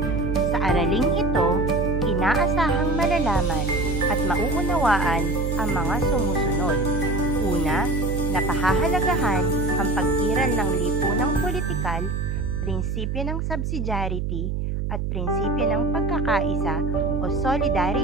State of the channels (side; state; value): right; noise; hum, 1 dB below the sound